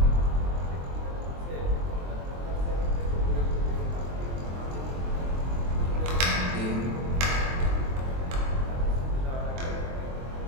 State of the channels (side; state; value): left; late; 23 ms